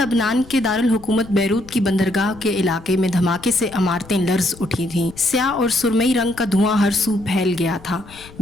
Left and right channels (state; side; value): noise; left; rumble, 20 dB below the sound